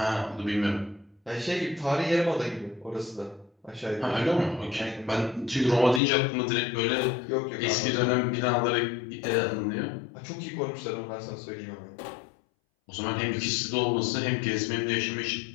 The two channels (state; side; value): drops out; right; at 6.0 s